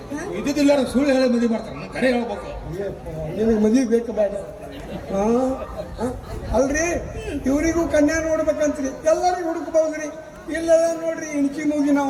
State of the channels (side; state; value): both; identical; correlation 1.00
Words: ಇದ್ದಿದ್ದಿಲ್ಲ ಸುಳ್ಳು ಹೇಳಿ ಮದುವೆ ಮಾಡ್ತಾರೆ ಕರೆ ಹೇಳ್ಬೇಕು ನಿನಗೆ ಮದುವೆ ಬೇಕು ಬೇಡ ಹಾಂ ಅಲ್ರಿ ಇವ್ರಿಗೂ ಕನ್ಯಾ ನೋಡ್ಬೇಕಂತ್ರಿ ಎಲ್ಲರಿಗೂ ಹುಡುಕ್ಬಹುದ್ರಿ ಇಲ್ಲೆಲ್ಲ ನೋಡ್ರಿ ಇಣಕಿ ಮುಗಿ